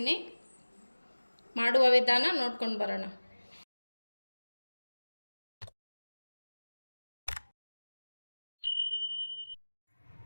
ಮಾಡುವ ವಿಧಾನ ನೋಡ್ಕೊಂಡು ಬರೋಣ.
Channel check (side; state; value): both; inverted; correlation -1.00